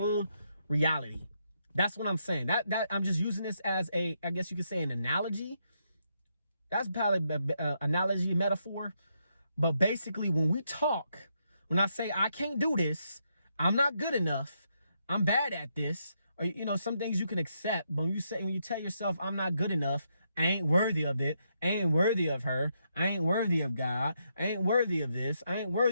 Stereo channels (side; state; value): both; inverted; correlation -0.79